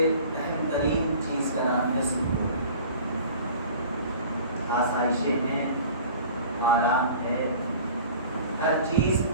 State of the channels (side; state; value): both; inverted; correlation -0.44